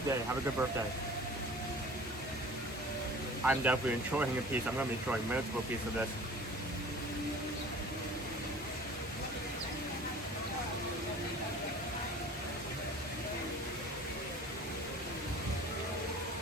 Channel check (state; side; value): normal; both; correlation 0.44